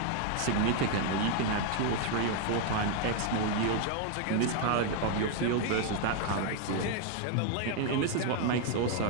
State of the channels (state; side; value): different; both; correlation 0.01